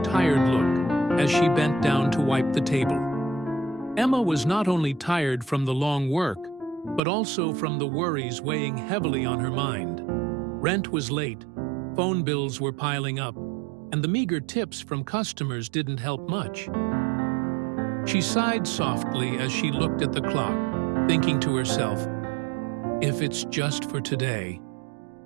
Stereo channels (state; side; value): drops out; left; at 7.0 s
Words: tired look as she bent down to wipe the table. Emma was not only tired from the long work, but also from the worries weighing heavily on her mind. Rent was late, phone bills were piling up, and the meager tips from customers didn't help much. She sighed softly as she looked at the clock, thinking to herself, "If it's just for today,